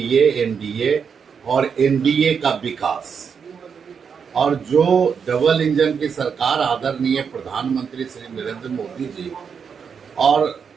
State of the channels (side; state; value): left; quieter; 6.5 dB